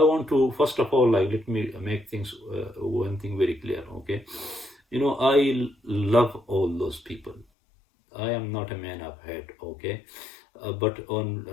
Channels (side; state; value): right; drops out; at 7.5 s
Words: want to first of all let me make things one thing very clear, okay. I love all those people. I am not a man of hate, okay. But on